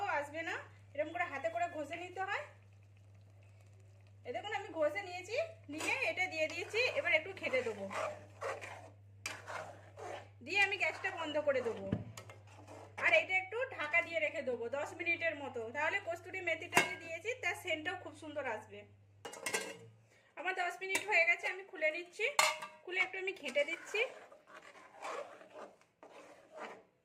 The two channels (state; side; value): identical; both; correlation 1.00